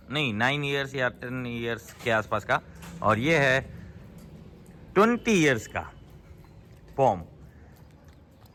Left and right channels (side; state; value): both; identical; correlation 1.00